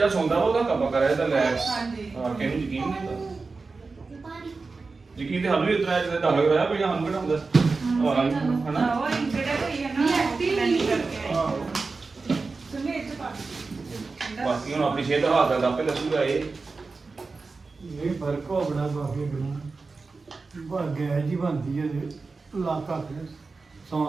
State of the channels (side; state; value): left; quieter; 4.1 dB